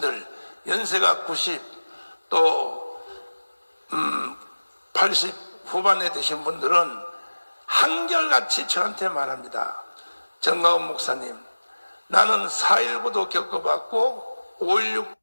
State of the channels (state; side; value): inverted; both; correlation -1.00